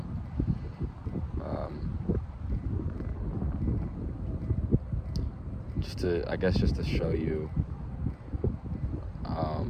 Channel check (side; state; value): both; identical; correlation 1.00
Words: Just to show you